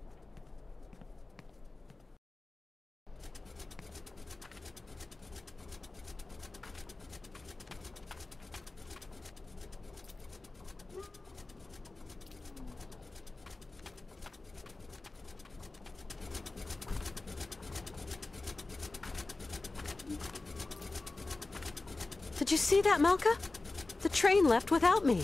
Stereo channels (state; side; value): quieter; right; 3.3 dB